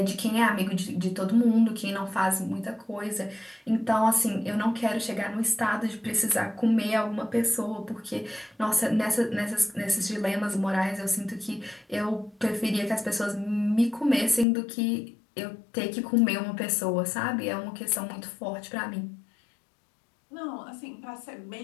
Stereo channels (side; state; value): right; drops out; at 14.5 s